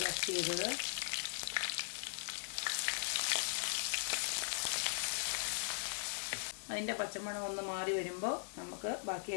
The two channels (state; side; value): silent; right; digital silence